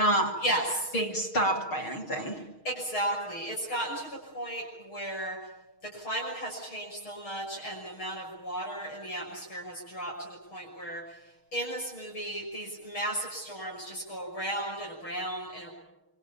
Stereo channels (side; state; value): right; late; 6.4 ms